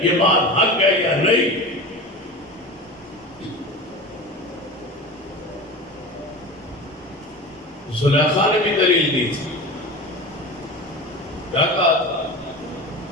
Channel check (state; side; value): normal; both; correlation 0.31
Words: یہ بات حق ہے یا نہیں؟ زلیخا نے بھی دلیل دی تھی، کیا کہا تھا؟